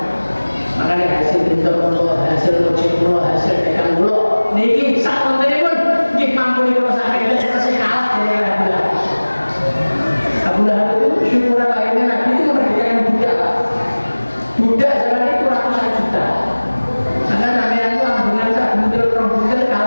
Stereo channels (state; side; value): inverted; both; correlation -1.00